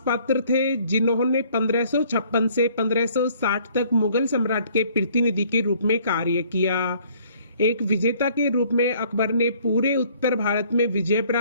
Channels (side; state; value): both; inverted; correlation -0.59